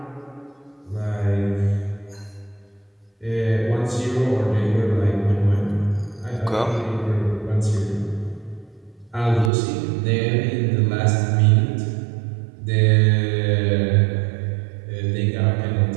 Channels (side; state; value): left; drops out; at 9.5 s